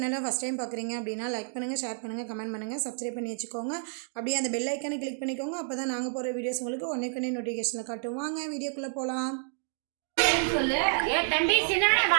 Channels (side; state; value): left; silent; digital silence